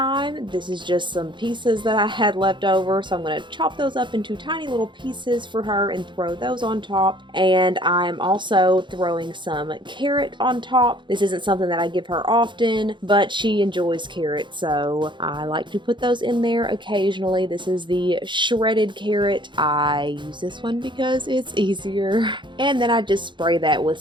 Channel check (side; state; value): left; late; 0.23 ms